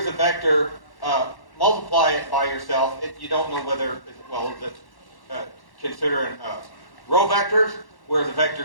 a vector, multiply it by yourself, you don't know whether, well, that's considering row vectors, where the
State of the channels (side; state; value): right; late; 1.1 ms